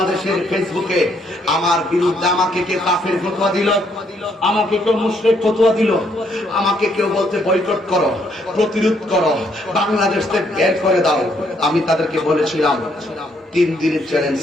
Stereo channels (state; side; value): normal; both; correlation 0.71